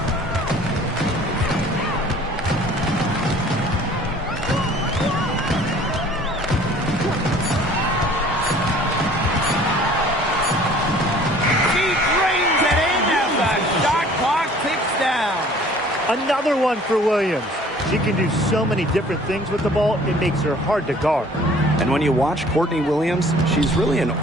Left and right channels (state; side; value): normal; both; correlation 0.52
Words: Another one for Williams. She can do so many different things with the ball, it makes her hard to guard. And when you watch Courtney Williams, she's really an